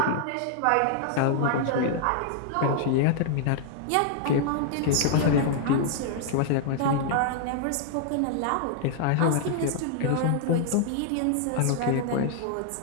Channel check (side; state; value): both; different; correlation 0.00